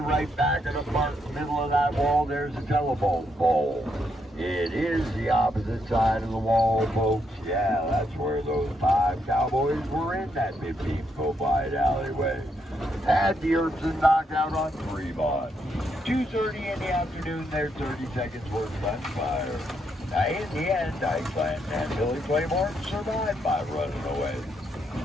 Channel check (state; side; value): normal; both; correlation 0.77